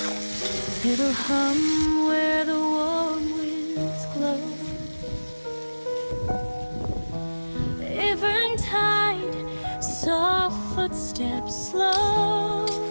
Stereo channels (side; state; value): both; inverted; correlation -1.00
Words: It'll hum where the warm winds glow. Eventide, soft footsteps slow.